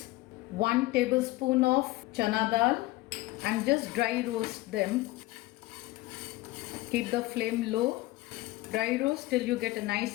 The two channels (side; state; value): right; quieter; 18.9 dB